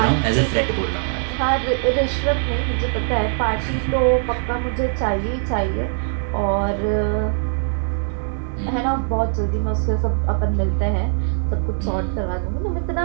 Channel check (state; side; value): silent; left; digital silence